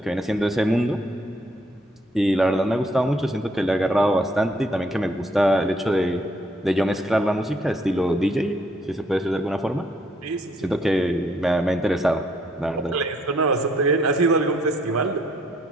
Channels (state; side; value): normal; both; correlation 0.68